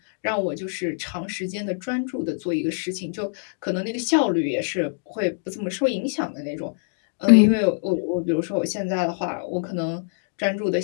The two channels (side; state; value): right; silent; digital silence